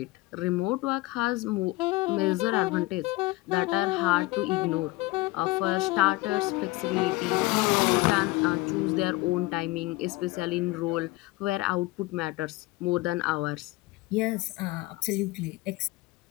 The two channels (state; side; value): quieter; right; 20.6 dB